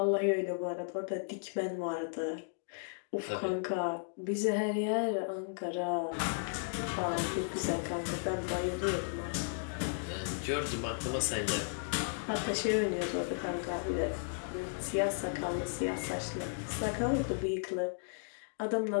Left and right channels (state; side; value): silent; right; digital silence